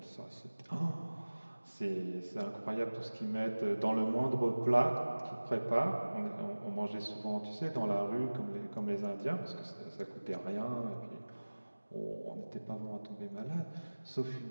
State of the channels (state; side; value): inverted; both; correlation -1.00